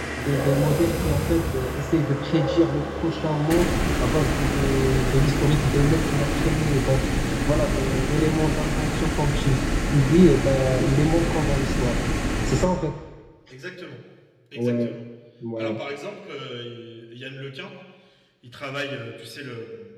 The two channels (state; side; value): identical; both; correlation 1.00